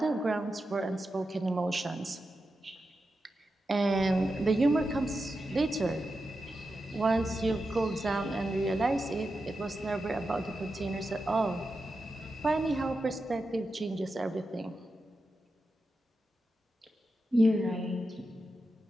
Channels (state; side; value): normal; both; correlation 0.89